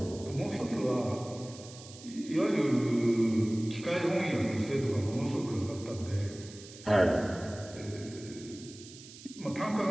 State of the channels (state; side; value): noise; right; hiss, 17 dB below the sound